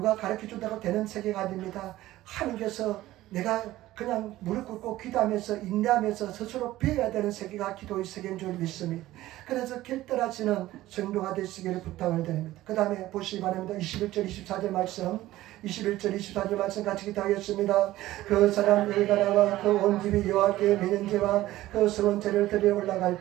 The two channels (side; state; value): left; quieter; 15.8 dB